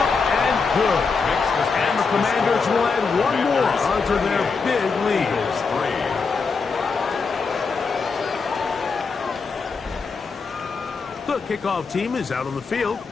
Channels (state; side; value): quieter; right; 4.8 dB